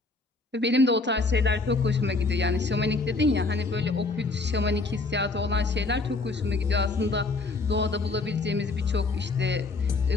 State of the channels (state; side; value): quieter; right; 3.6 dB